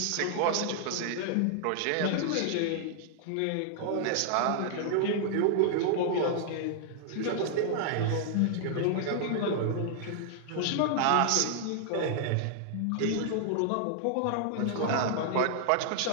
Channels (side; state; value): both; different; correlation -0.01